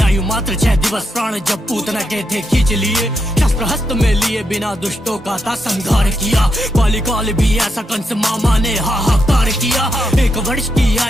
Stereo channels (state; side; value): normal; both; correlation 0.82